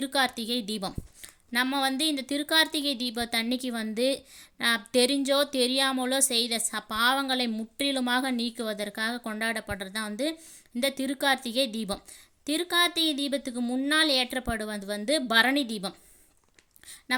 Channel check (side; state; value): both; identical; correlation 1.00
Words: தீபம். நம்ம இந்த திருக்கார்த்திகை தீபத்தன்னைக்கு தெரிஞ்சோ தெரியாமலோ செய்த பாவங்களை முற்றிலுமாக நீக்குவதற்காக கொண்டாடப்படுறது தான் இந்த திருக்கார்த்திகை தீபம். திருக்கார்த்திகை தீபத்துக்கு முன்னால் ஏற்றப்படுவது பரணி தீபம்.